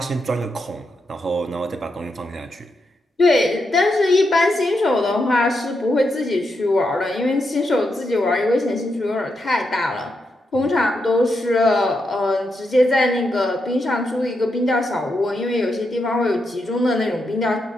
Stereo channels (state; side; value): normal; both; correlation 0.83